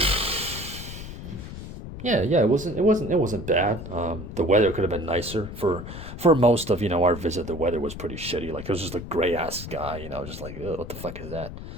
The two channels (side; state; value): left; noise; rumble, 10 dB below the sound